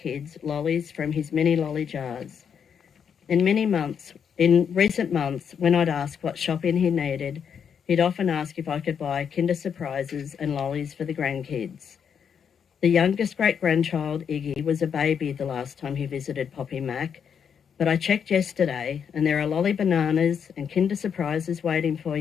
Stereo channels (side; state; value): right; quieter; 7.4 dB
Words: lollies from his mini lolly jars. In recent months, when I'd ask what shopping he needed, he'd often ask if I could buy Kinder Surprises and lollies for the grandkids. The youngest great-grandchild, Iggy, was a baby the last time he visited Poppy Mack, but I checked yesterday and there are lolly bananas and Kinder Surprises waiting for